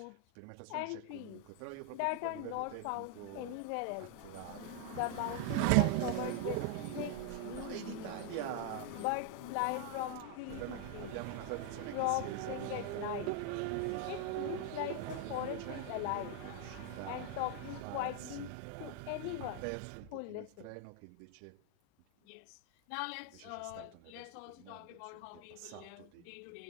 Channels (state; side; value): different; both; correlation 0.00